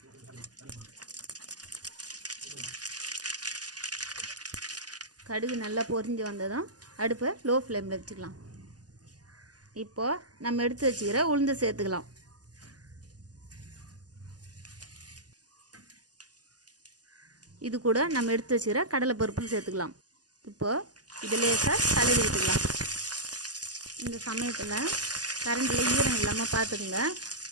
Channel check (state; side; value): late; left; 0.68 ms